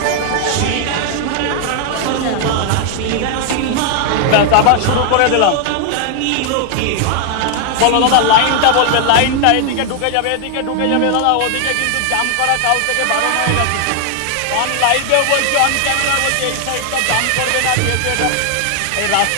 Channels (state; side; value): different; both; correlation 0.00